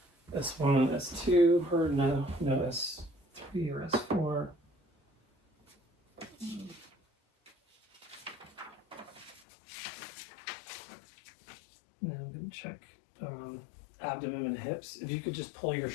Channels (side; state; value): right; drops out; at 9.4 s